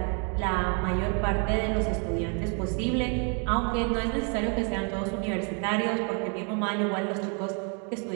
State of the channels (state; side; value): quieter; left; 37.9 dB